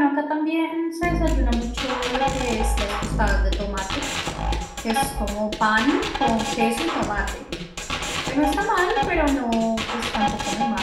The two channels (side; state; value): both; identical; correlation 1.00